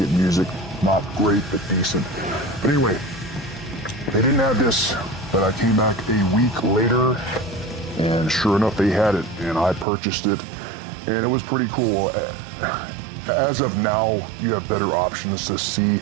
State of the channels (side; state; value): left; drops out; at 9.9 s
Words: music. Not great, but decent. But anyway, they didn't have this, but I came back a week later, and sure enough, they had it, and I purchased it, and it was pretty cool. As of now, you have better options to see